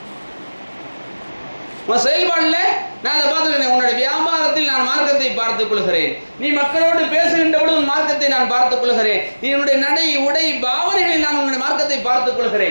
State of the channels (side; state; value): both; inverted; correlation -1.00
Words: உன் செயல்பாடுல நான் அதை பார்த்துக்கிறேன். உன்னுடைய வியாபாரத்தில் நான் மார்க்கத்தை பார்த்துக் கொள்கிறேன், நீ மக்களோடு பேசுகின்ற பொழுது உன் மார்க்கத்தை நான் பார்த்துக் கொள்கிறேன், நீ உன்னுடைய நடை உடை பாவனைகளில் நான் உன்னுடைய மார்க்கத்தை பார்த்துக்